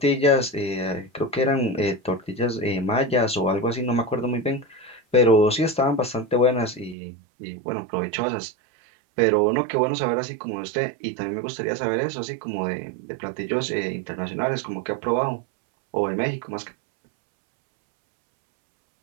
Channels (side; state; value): left; drops out; at 7.0 s